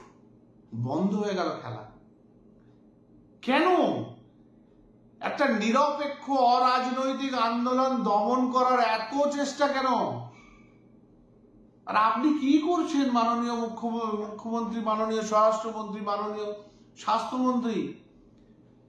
বন্ধ হয়ে গেল খেলা। কেন? একটা নিরপেক্ষ অরাজনৈতিক আন্দোলন দমন করার এত চেষ্টা কেন? আর আপনি কি করছেন মাননীয় মুখ্যমন্ত্রী, মাননীয় স্বরাষ্ট্রমন্ত্রী, মাননীয় স্বাস্থ্যমন্ত্রী?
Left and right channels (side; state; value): both; identical; correlation 1.00